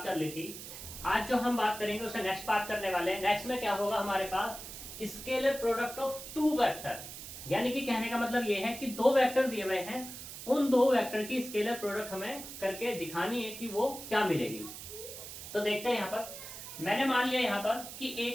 कर ली थी। आज जो हम बात करेंगे उससे नेक्स्ट बात करने वाले हैं। नेक्स्ट में क्या होगा, हमारे पास scalar product of two vector, यानी कि कहने का मतलब ये है कि दो वेक्टर दिए हुए हैं, उन दो वेक्टर की स्केलर प्रोडक्ट हमें करके दिखानी है कि वो क्या मिलेगी। तो देखते हैं यहाँ पर मैंने मान लिया यहाँ पर कि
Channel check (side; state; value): right; noise; hiss, 11 dB below the sound